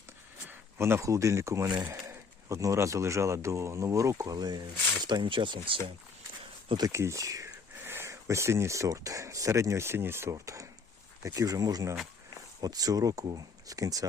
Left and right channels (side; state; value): right; quieter; 4.7 dB